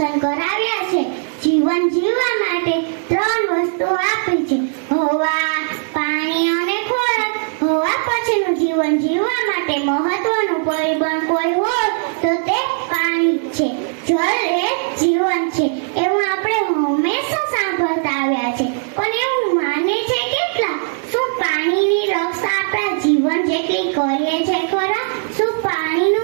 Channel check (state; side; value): silent; left; digital silence